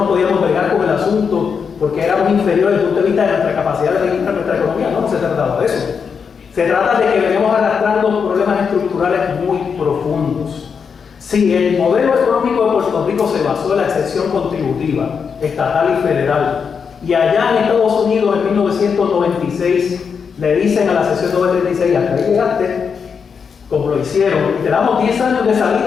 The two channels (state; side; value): quieter; right; 6.2 dB